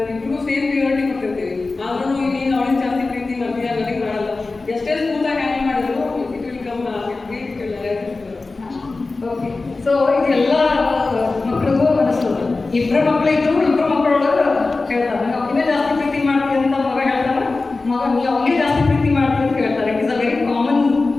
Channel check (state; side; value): quieter; right; 3.6 dB